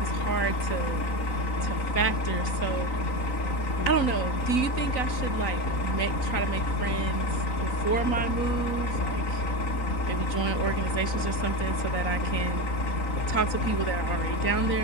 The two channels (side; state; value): right; late; 3.9 ms